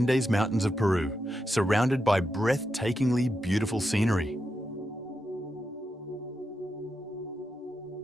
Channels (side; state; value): both; normal; correlation 0.86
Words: Mountains of Peru, surrounded by breathtakingly beautiful scenery.